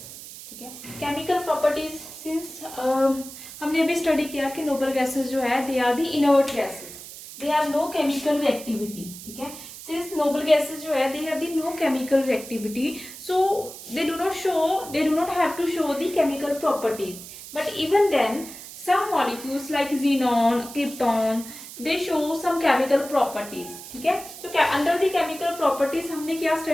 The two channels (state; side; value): noise; right; hiss, 14 dB below the sound